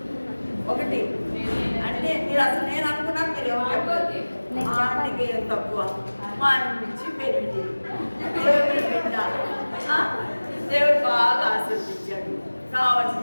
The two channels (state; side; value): inverted; both; correlation -1.00